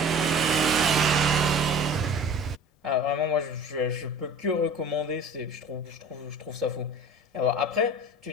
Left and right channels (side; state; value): both; normal; correlation 0.41